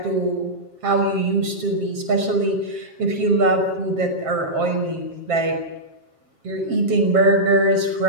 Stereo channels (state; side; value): late; left; 7.4 ms